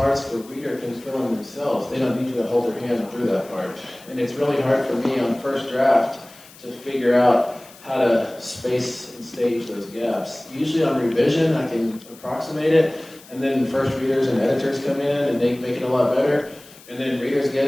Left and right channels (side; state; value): left; noise; hiss, 22 dB below the sound